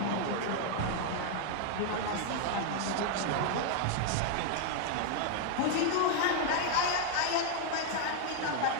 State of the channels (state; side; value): different; both; correlation 0.00